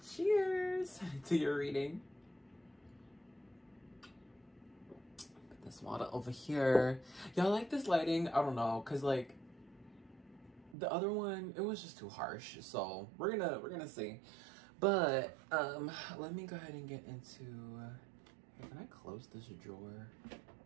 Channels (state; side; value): drops out; left; at 10.8 s